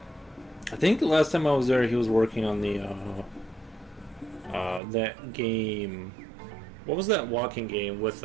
I think the last time I was there, he was working on the that game. What was that walking game with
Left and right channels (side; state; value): left; drops out; at 4.8 s